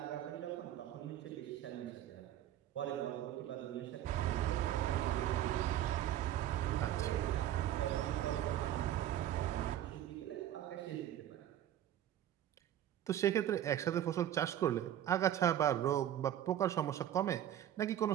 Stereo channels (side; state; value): left; quieter; 11.7 dB